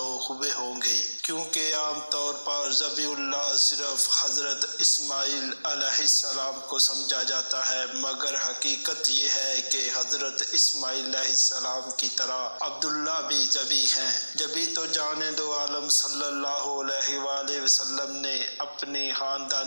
ہوئے ہوں گے، کیونکہ عام طور پر ذبیح اللہ صرف حضرت اسماعیل علیہ السلام کو سمجھا جاتا ہے، مگر حقیقت یہ ہے کہ حضرت اسماعیل علیہ السلام کی طرح عبداللہ بھی ذبیح ہیں۔ جبھی تو جان دو عالم صلی اللہ علیہ وآلہ وسلم نے اپنی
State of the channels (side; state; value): both; inverted; correlation -1.00